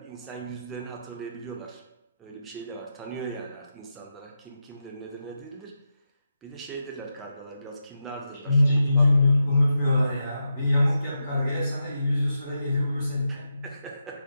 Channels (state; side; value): inverted; both; correlation -0.87